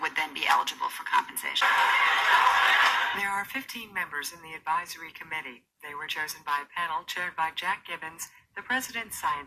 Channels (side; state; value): both; identical; correlation 1.00